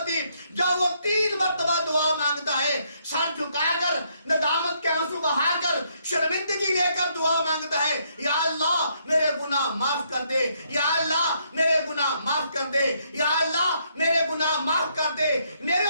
جب وہ 3 مرتبہ دعا مانگتا ہے، سر جھکا کر، ندامت کے آنسو بہا کر، شرمندگی لے کر دعا مانگتا ہے، یا اللہ میرے گناہ معاف کر دے، یا اللہ میرے گناہ معاف کر دے، یا اللہ میرے گناہ معاف کر دے۔ میرے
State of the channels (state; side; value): inverted; both; correlation -0.72